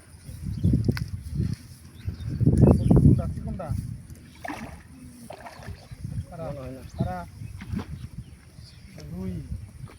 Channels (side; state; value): both; identical; correlation 1.00